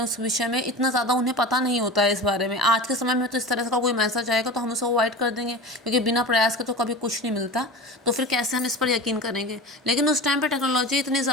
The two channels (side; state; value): both; normal; correlation 0.31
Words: विषय में, इतना ज़्यादा उन्हें पता नहीं होता है इस बारे में। आज के समय में तो इस तरह का कोई मैसेज आएगा तो हम उसे अवॉइड कर देंगे, क्योंकि बिना प्रयास के तो कभी कुछ नहीं मिलता, तो फिर कैसे हम इस पर यकीन करेंगे। लेकिन उस टाइम पर टेक्नोलॉजी इतनी